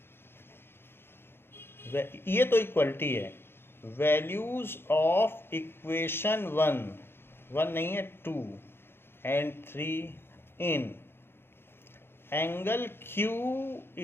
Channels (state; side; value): late; right; 0.11 ms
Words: ये तो इक्वलिटी है, वैल्यूज ऑफ इक्वेशन 1 नहीं है 2 and 3 in angle Q